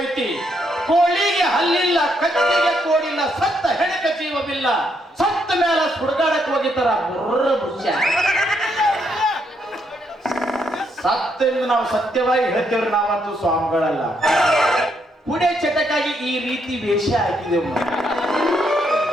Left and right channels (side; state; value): both; normal; correlation 0.75